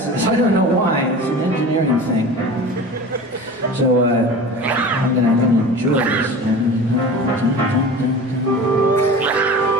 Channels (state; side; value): normal; both; correlation 0.36